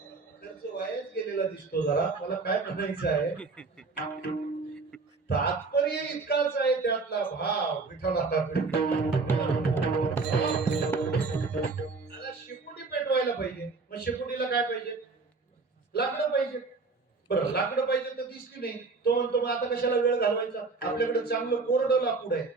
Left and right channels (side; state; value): left; quieter; 4.1 dB